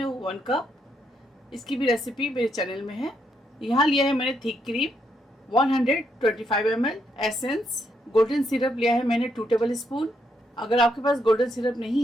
1 कप। इसकी भी रेसिपी मेरे चैनल में है। यहाँ लिया है मैंने thick cream 125 ml, essence golden syrup लिया है मैंने 2 टेबल स्पून। अगर आपके पास गोल्डन सिरप नहीं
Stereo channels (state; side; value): normal; both; correlation 0.77